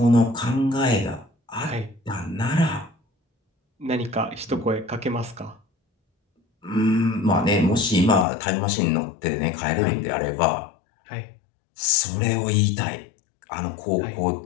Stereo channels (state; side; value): drops out; right; at 8.2 s